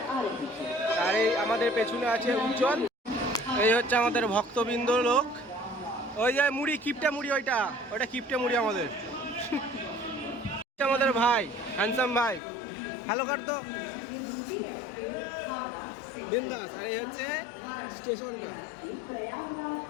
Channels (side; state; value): right; drops out; at 12.4 s